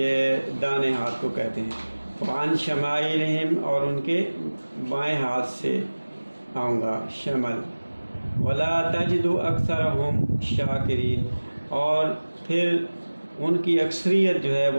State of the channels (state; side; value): inverted; both; correlation -1.00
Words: دانے ہاتھ کو کہتے ہیں۔ وعن شمائلہم اور ان کے بائیں ہاتھ سے آؤں گا، شمل۔ ولا تجد اکثرہم شاکرین، اور پھر ان کی اکثریت جو ہے